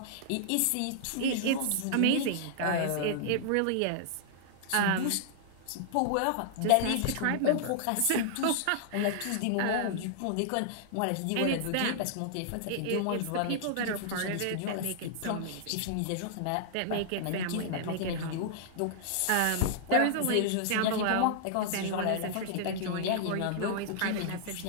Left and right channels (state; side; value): different; both; correlation -0.01